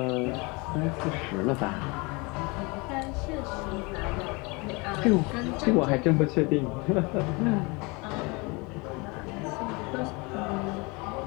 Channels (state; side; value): quieter; right; 27.5 dB